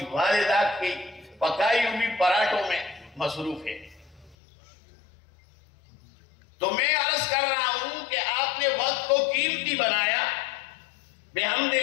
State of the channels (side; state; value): right; drops out; at 4.4 s